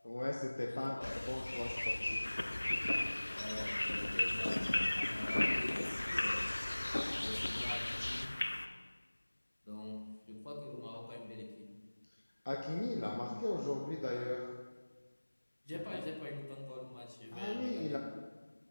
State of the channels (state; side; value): inverted; both; correlation -1.00